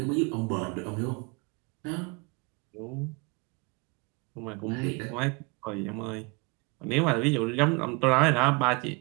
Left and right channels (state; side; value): quieter; left; 27.8 dB